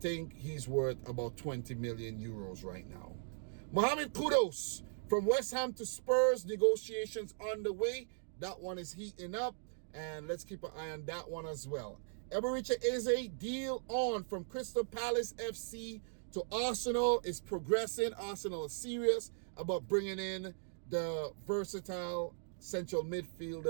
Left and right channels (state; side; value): silent; left; digital silence